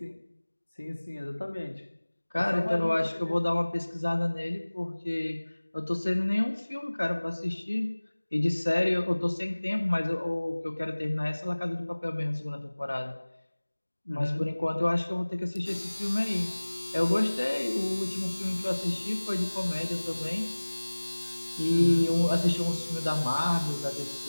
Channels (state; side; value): inverted; both; correlation -1.00